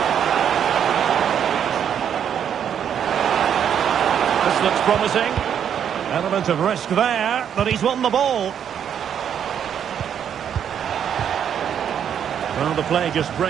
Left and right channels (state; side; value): quieter; left; 8.7 dB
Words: This looks promising. Element of risk there, but he's won the ball. Well, the play just